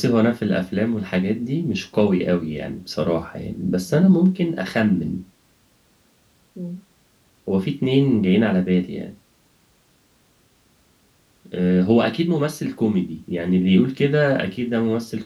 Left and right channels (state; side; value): identical; both; correlation 1.00